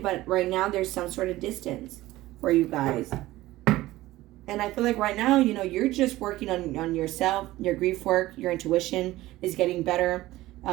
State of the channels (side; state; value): left; quieter; 17.1 dB